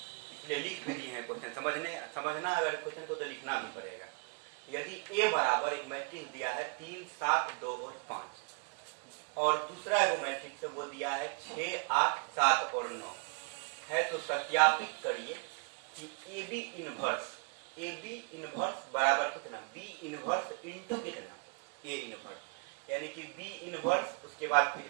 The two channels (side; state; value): left; quieter; 38.8 dB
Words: इसलिए लिख भी दिए हैं क्वेश्चन। समझना अगर क्वेश्चन को तो लिखना भी पड़ेगा। यदि ए बराबर एक मैट्रिक्स दिया है 3, 7, 2 और 5 और दूसरा एगो मैट्रिक्स है वो दिया है 6, 8, 7 और 9 है, तो सत्यापित करिए कि ए बी इनवर्स बराबर कितना, बी इनवर्स इंटू कितना, ए इनवर्स, यानी कि बी इनवर्स उसके बाद